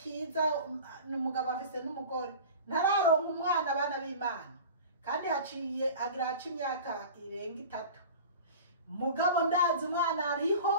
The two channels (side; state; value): both; inverted; correlation -0.38